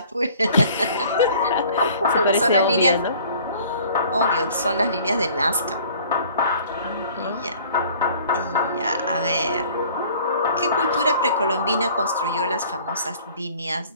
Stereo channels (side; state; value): both; inverted; correlation -0.52